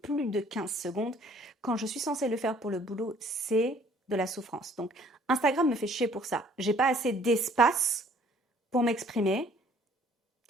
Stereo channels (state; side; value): normal; both; correlation 0.58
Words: plus de 15 secondes, quand je suis censée le faire pour le boulot, c'est de la souffrance. Donc, Instagram me fait chier pour ça. J'ai pas assez d'espace pour m'exprimer